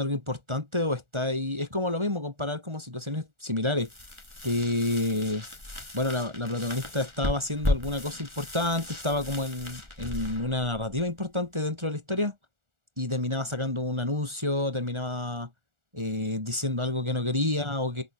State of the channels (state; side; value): late; left; 1.4 ms